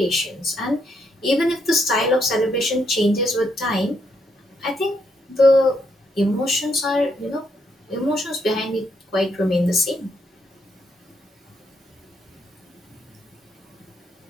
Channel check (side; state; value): both; normal; correlation 0.76